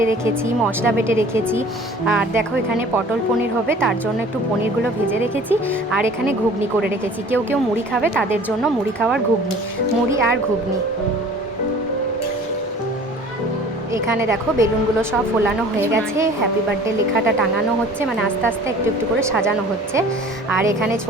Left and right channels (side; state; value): both; normal; correlation 0.47